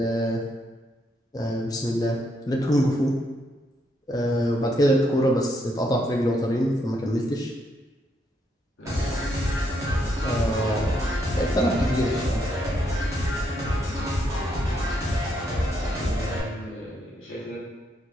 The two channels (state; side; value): normal; both; correlation 0.76